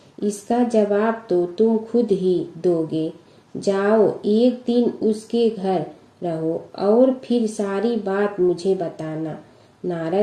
इसका जवाब तो तुम खुद ही दोगे। जाओ, एक दिन उसके घर रहो और फिर सारी बात मुझे बताना।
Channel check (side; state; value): both; identical; correlation 1.00